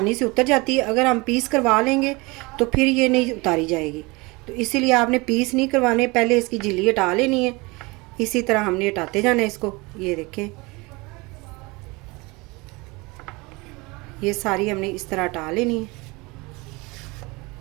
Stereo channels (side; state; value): left; quieter; 24.9 dB